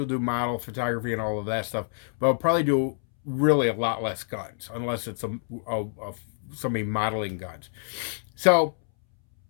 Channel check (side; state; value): right; silent; 60 dB below the other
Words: do model photography and all of that stuff, but I'll probably do really a lot less guns, unless it's somebody modeling guns. So